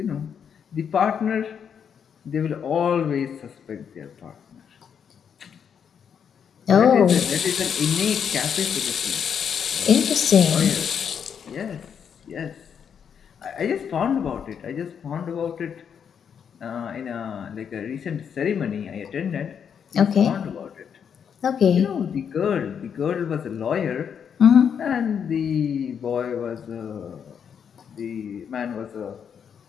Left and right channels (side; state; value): right; quieter; 7.6 dB